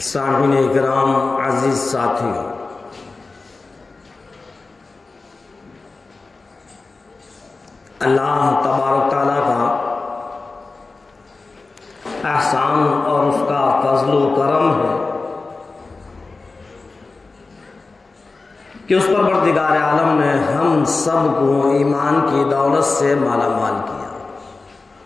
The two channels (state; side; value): quieter; right; 3.8 dB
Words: سامعین کرام، عزیز ساتھیوں، اللہ تبارک تعالیٰ کا احسان اور اس کا فضل و کرم ہے کہ اس پروردگار عالم نے ہم سب کو ایمان کی دولت سے مالا مال کیا۔